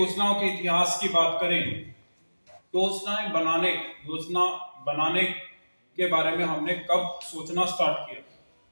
के इतिहास की बात करें, योजना बनाने के बारे में हमने कब सोचना स्टार्ट किया,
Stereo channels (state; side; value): inverted; both; correlation -1.00